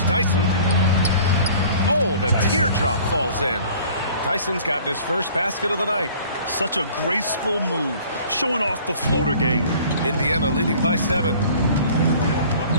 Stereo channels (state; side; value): inverted; both; correlation -0.49